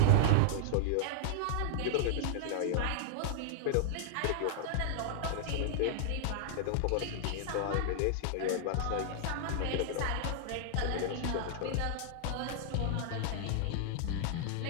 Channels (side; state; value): both; different; correlation -0.01